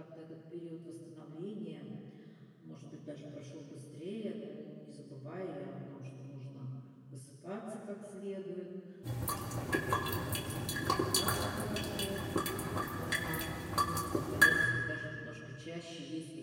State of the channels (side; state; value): both; identical; correlation 1.00